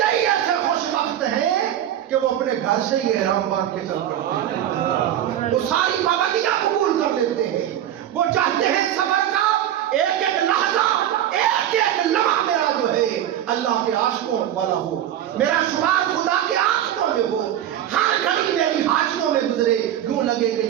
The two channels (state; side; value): quieter; left; 11.4 dB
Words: ایسے خوش بخت ہیں کہ وہ اپنے گھر سے ہی احرام باندھ کے چل پڑتے ہیں، وہ ساری پابندیاں قبول کر لیتے ہیں، وہ چاہتے ہیں سفر کا ایک ایک لحظہ، ایک ایک لمحہ میرا جو ہے اللہ کے عاشقوں والا ہو، میرا شمار خدا کے عاشقوں میں ہو، ہر گھڑی میری حاجیوں میں گزرے، یوں لگے کہ